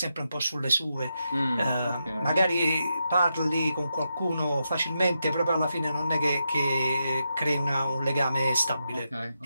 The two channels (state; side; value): inverted; both; correlation -0.85